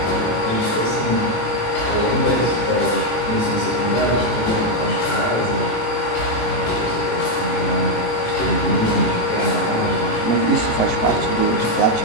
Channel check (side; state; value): right; late; 18 ms